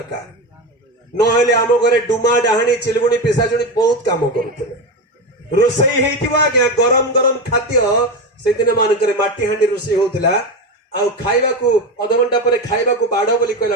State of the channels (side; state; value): both; normal; correlation 0.18